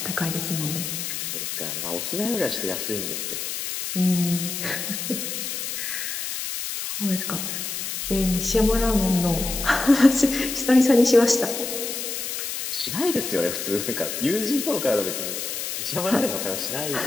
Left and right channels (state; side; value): noise; left; hiss, 4 dB below the sound